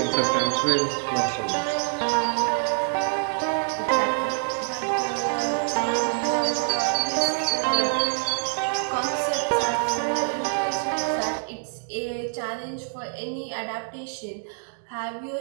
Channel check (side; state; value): left; silent; digital silence